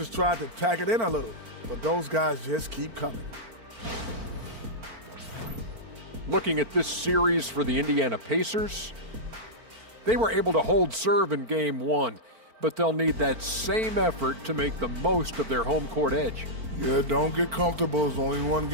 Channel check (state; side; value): late; left; 4.5 ms